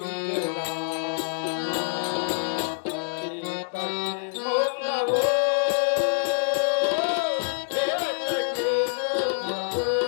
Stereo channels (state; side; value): silent; right; digital silence